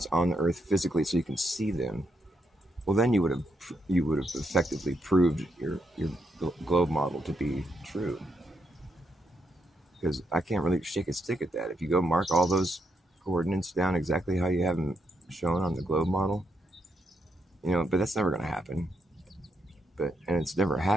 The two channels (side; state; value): both; normal; correlation 0.79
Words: on the Earth physically so you can see them, well, then you would have effectively proved your globe model to be true. Because I can't really shake a stick at that. If you go mark all those coordinates down exactly how you have them shown on the globe model, but that's never going to happen. And it's never